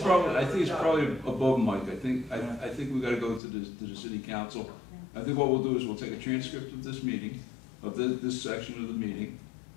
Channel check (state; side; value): drops out; right; at 3.4 s